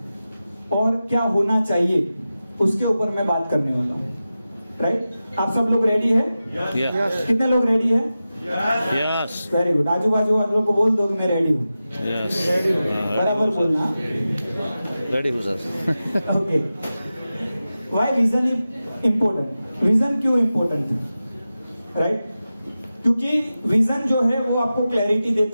और क्या होना चाहिए उसके ऊपर मैं बात करने वाला हूँ। राइट, आप सब लोग रेडी है? यस। कितने लोग रेडी है? यस। Very good. आजू बाजू आप लोग को बोल दो कि मैं रेडी हूँ। यस। बराबर बोलना। रेडी हूँ sir. Okay, why vision is important? Vision क्यों इम्पोर्टेंट है? राइट, क्योंकि विजन जो है वो आपको क्लैरिटी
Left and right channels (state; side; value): inverted; both; correlation -0.93